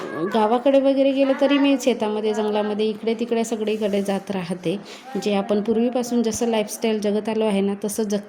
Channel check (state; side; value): identical; both; correlation 1.00